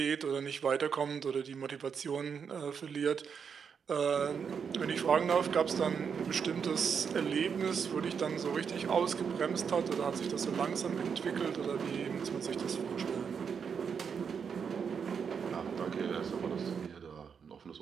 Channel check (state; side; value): quieter; left; 6.6 dB